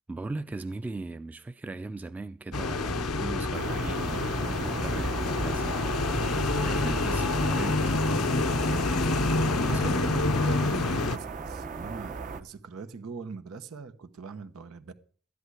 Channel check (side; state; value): both; normal; correlation 0.53